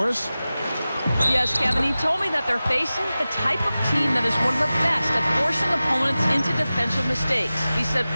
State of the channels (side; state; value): both; inverted; correlation -0.96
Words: Yes, Kevin, he told me that they're facing the type of team that is one of the best at forcing opponents into defensive mistakes. He said,